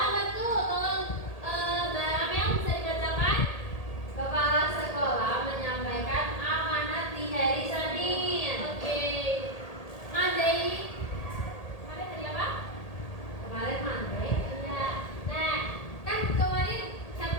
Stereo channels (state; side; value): late; right; 1.8 ms